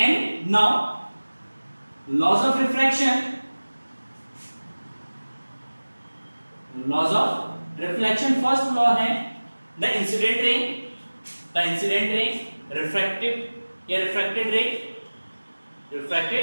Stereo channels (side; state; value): both; inverted; correlation -1.00